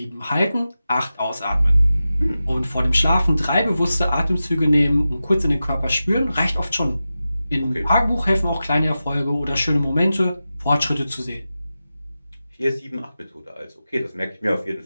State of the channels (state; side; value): inverted; both; correlation -0.93